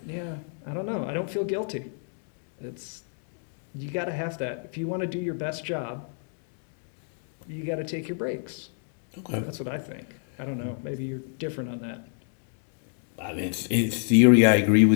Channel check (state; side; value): silent; right; 59 dB below the other